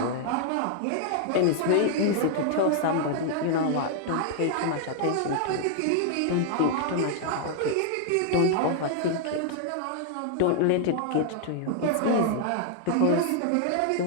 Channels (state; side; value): different; both; correlation 0.00